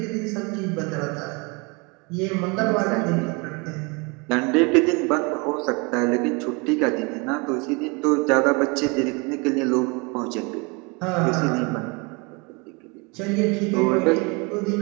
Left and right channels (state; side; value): quieter; left; 29.5 dB